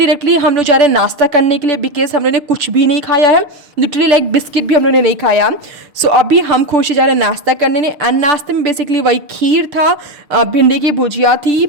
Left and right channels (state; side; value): late; left; 6.5 ms